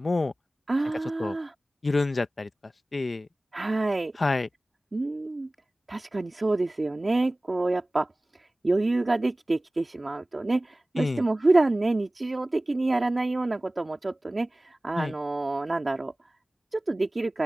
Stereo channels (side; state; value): both; normal; correlation 0.98